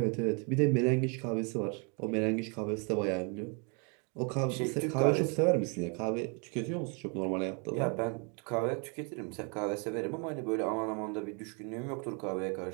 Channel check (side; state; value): left; quieter; 35.5 dB